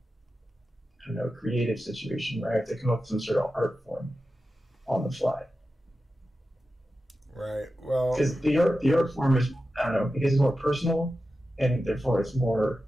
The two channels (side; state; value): both; normal; correlation 0.92